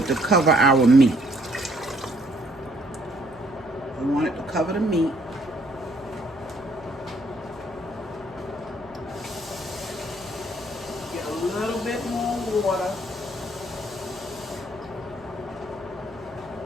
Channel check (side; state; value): right; noise; hum, 25 dB below the sound